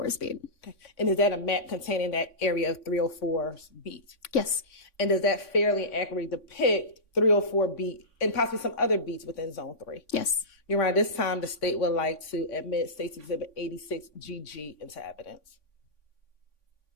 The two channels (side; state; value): right; late; 3.6 ms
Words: beat. Okay. And is that a map containing that area of 304's beat? Yes. And does that fairly accurately depict 304 beat and possibly some other beats within Zone 3? Yes. Your Honor, this time the state would like to admit State's Exhibit 86GG into evidence